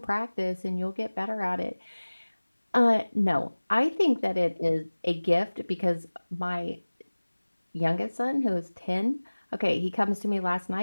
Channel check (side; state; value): both; inverted; correlation -1.00